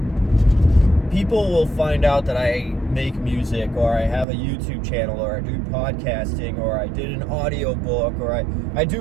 people will find out that I make music, or I have a YouTube channel, or I do podcasting, or I did an audiobook, or I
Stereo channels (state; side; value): drops out; left; at 4.2 s